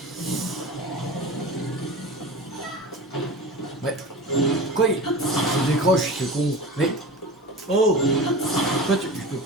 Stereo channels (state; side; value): normal; both; correlation 0.33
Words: Ouais. Quoi il se décroche, c'est con. Mais... Oh, pourquoi tu... Je peux